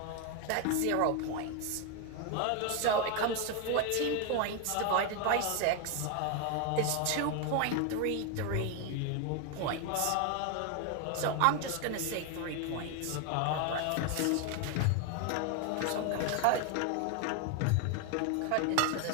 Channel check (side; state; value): both; different; correlation 0.01